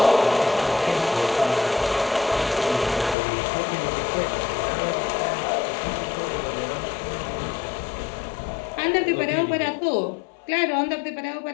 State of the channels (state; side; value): drops out; right; at 3.2 s